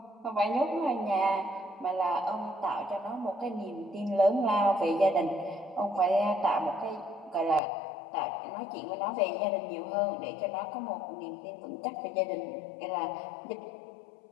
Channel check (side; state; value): right; drops out; at 7.6 s